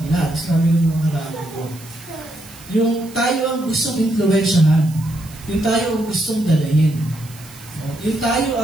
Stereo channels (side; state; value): right; noise; hiss, 20 dB below the sound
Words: sabi ng mga karami ko. Yung tayo ang gustong influensyahan. Yung tayo ang gustong dalahin. Yung tayo